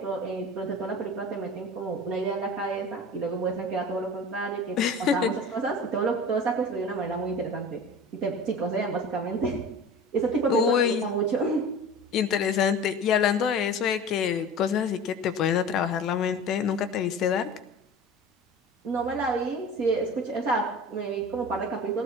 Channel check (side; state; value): both; normal; correlation 0.37